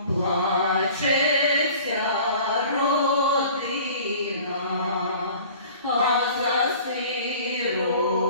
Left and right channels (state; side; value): inverted; both; correlation -0.46